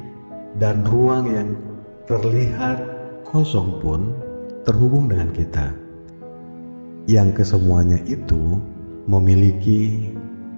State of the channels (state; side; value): inverted; both; correlation -1.00